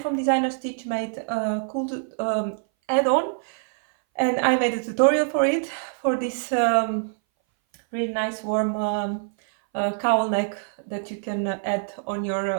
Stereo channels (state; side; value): silent; left; 59 dB below the other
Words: from Designer Stitch made a cool add-on, and I made a tutorial for it, for this really nice warm cowl neck that you can add on